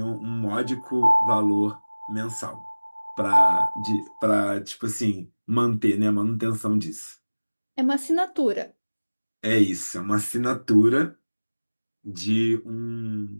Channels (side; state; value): both; inverted; correlation -1.00